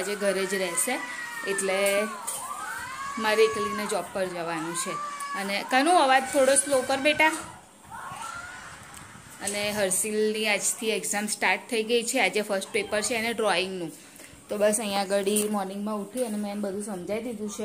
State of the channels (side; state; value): both; identical; correlation 1.00